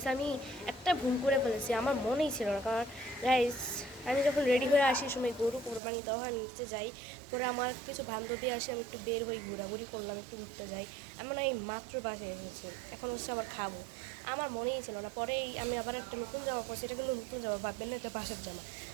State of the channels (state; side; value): drops out; left; at 5.8 s